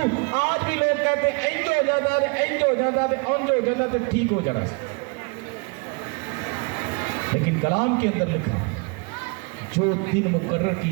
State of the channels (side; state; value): left; quieter; 32.3 dB